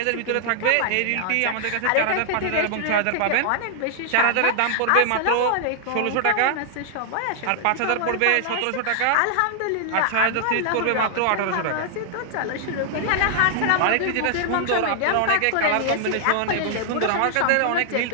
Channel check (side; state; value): both; different; correlation -0.01